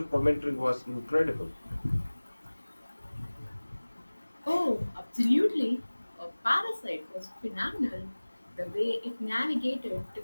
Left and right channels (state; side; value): inverted; both; correlation -1.00